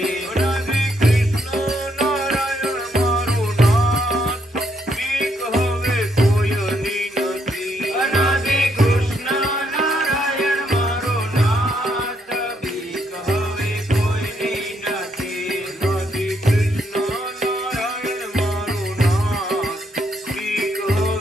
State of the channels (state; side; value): normal; both; correlation 0.74